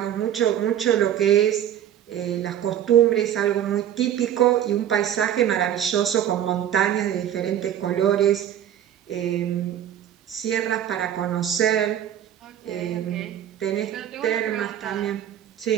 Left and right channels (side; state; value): left; quieter; 10.5 dB